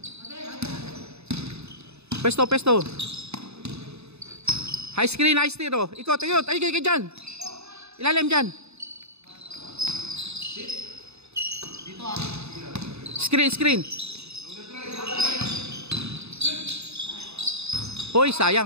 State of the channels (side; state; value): left; late; 0.80 ms